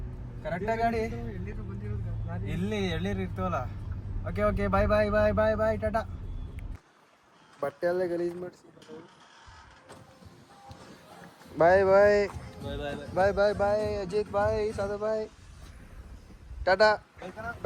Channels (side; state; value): both; identical; correlation 1.00